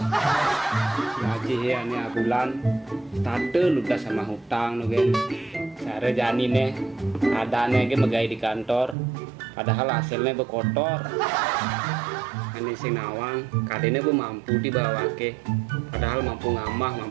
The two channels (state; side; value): drops out; left; at 9.0 s